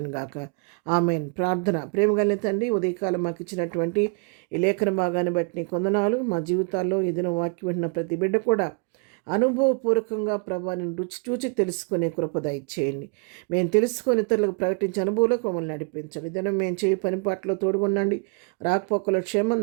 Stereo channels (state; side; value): quieter; left; 34.8 dB